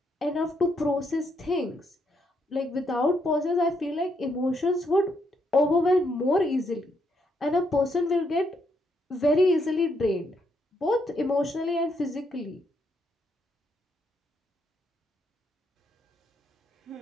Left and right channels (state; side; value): normal; both; correlation 0.76